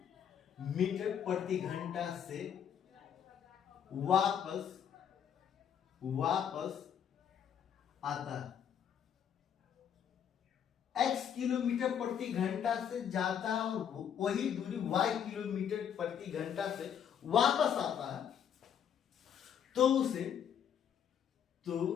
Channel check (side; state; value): right; quieter; 8.6 dB